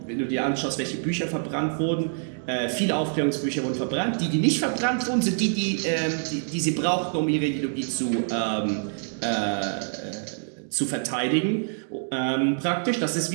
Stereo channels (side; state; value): left; silent; digital silence